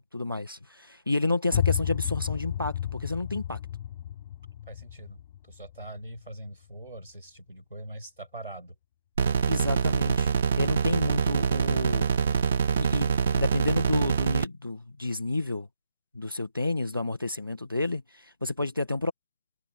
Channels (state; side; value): inverted; both; correlation -0.79